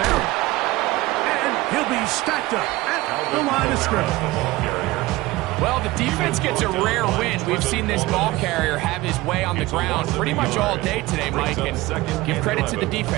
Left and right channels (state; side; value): quieter; left; 19.2 dB